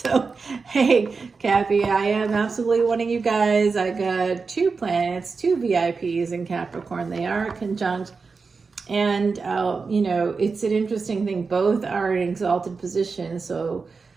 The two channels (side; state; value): left; quieter; 4.7 dB